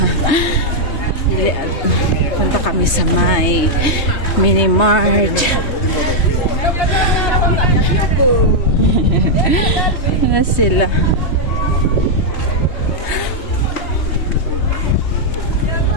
Punta kami sa may mini mart. Ano sila?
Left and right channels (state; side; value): late; right; 3.2 ms